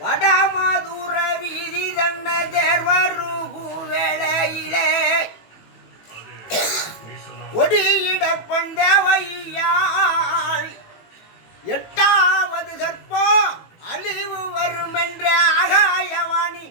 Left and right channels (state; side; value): late; right; 18 ms